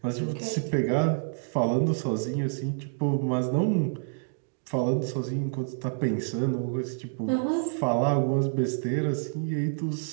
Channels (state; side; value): silent; left; digital silence